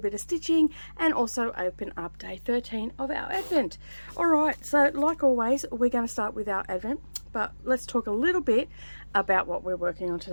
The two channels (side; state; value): both; inverted; correlation -1.00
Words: bit of stitching and also open up day 13 of our Advent. Alright, so like always we're going to start with our Advent, but let's talk a little bit about what we're working on